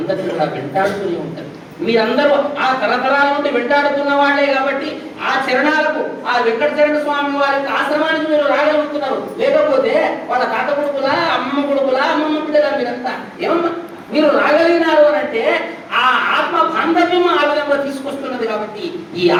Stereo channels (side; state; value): both; identical; correlation 1.00